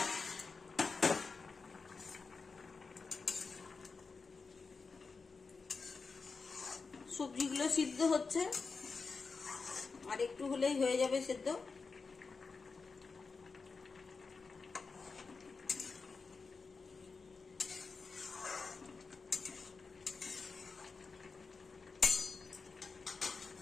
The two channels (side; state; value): right; quieter; 4.6 dB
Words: সবজিগুলো সিদ্ধ হচ্ছে, আর একটু হলেই হয়ে যাবে সেদ্ধ।